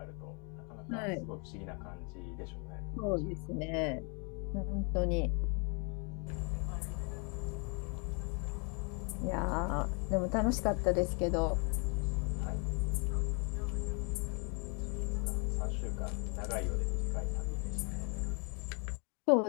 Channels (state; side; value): quieter; right; 35.1 dB